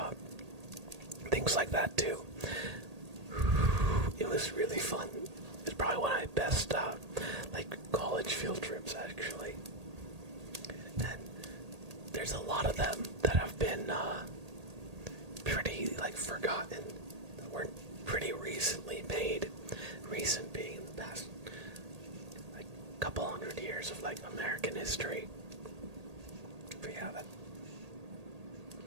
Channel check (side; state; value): left; late; 1.8 ms